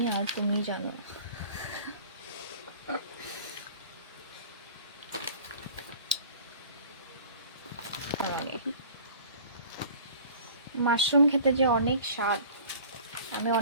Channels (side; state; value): both; inverted; correlation -0.45